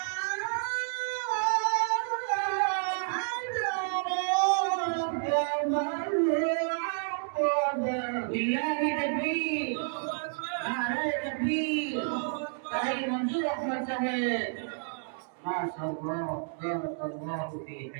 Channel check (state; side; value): silent; left; digital silence